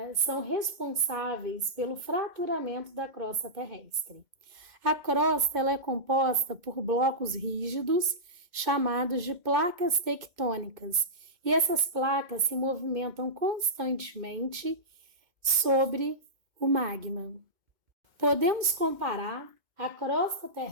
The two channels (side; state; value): left; late; 2.1 ms